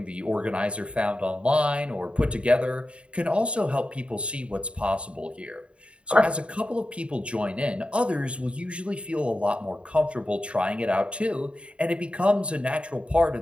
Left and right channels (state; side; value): late; left; 0.059 ms